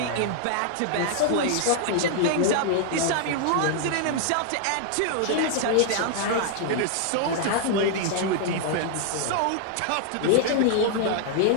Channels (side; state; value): both; different; correlation 0.00